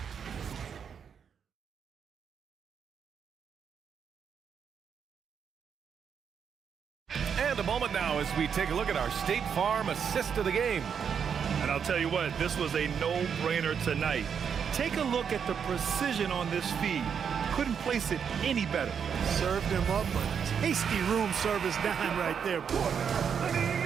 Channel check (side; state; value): left; quieter; 7.2 dB